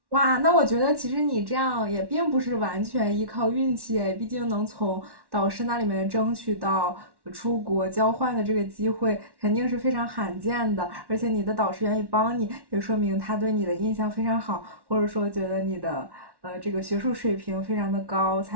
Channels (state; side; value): late; left; 1.1 ms